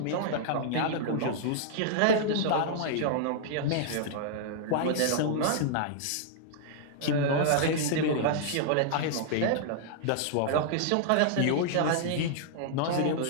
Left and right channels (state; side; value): different; both; correlation -0.01